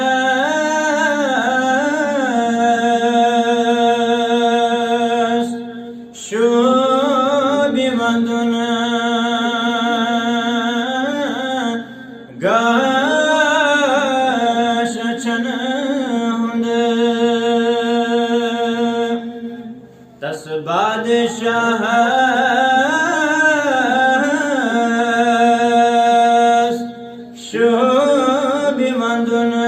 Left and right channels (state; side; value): identical; both; correlation 1.00